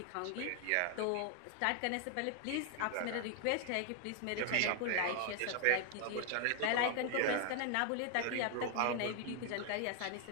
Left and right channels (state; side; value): different; both; correlation 0.00